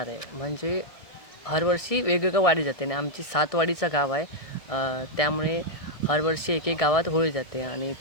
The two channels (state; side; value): late; right; 1.6 ms